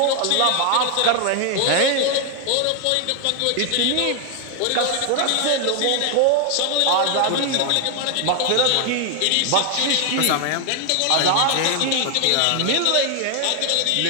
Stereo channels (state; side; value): different; both; correlation 0.00